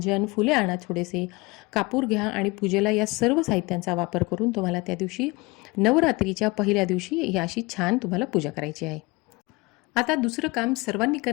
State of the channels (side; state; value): right; quieter; 24.1 dB